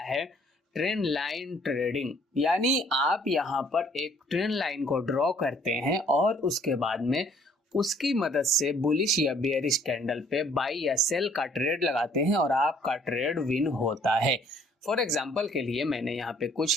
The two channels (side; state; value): both; normal; correlation 0.61